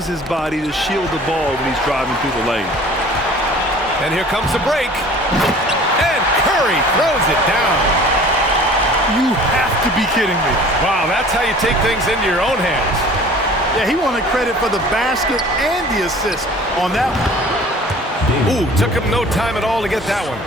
his body to shield the ball when he's driving through the lane. And here comes the break. And Curry throws it down. You have to be kidding me. Wow, that's how you take things into your own hands. Yeah, he wanted credit for the basket and the assist on that one. Ooh, took him no time at all to get that one.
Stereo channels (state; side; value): normal; both; correlation 0.47